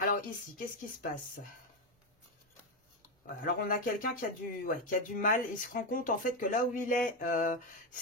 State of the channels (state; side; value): normal; both; correlation 0.09